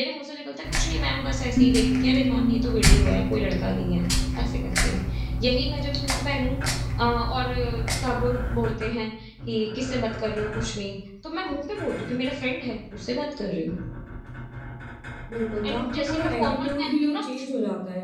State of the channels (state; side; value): identical; both; correlation 1.00